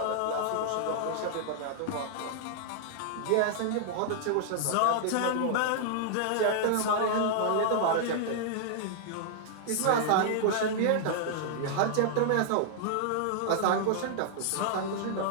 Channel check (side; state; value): both; different; correlation -0.01